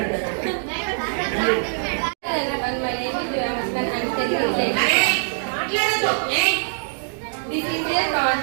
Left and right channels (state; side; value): silent; left; digital silence